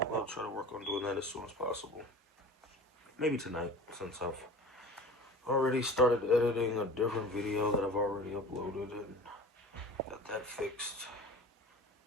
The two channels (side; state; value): both; normal; correlation 0.38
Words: I'll try to work on doing that as soon as possible. Maybe tonight, since I've already started editing a different video that I've already uploaded and got that fixed.